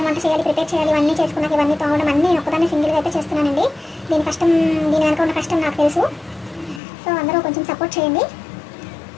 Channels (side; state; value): right; drops out; at 6.8 s